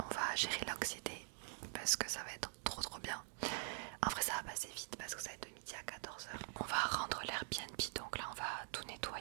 va gérer l'anxiété parce que ça va être trop bien. En vrai ça va passer vite parce que ça va être de midi à 14h. On va rendre l'Airbnb, donc là on va tout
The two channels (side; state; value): left; silent; digital silence